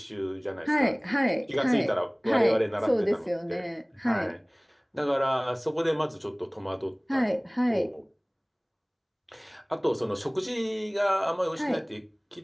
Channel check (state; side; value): identical; both; correlation 1.00